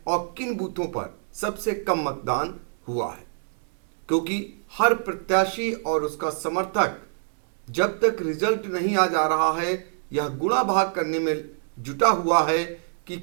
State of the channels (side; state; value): left; silent; digital silence